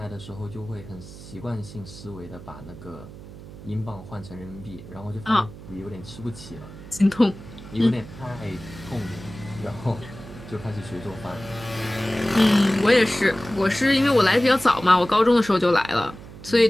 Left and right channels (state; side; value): noise; right; hum, 16 dB below the sound